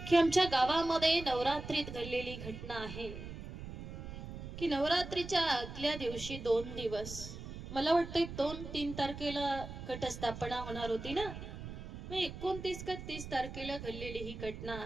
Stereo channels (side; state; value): right; noise; rumble, 10 dB below the sound